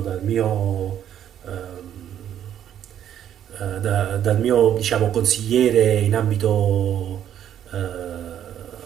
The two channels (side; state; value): left; quieter; 10.2 dB